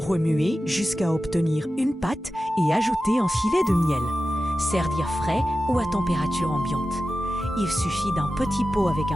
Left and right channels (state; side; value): normal; both; correlation 0.93